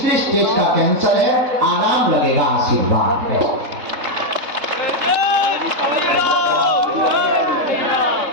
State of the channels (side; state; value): left; late; 3.7 ms